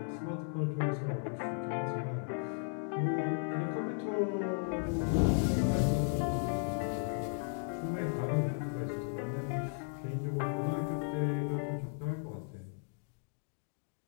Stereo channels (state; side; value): silent; right; 54 dB below the other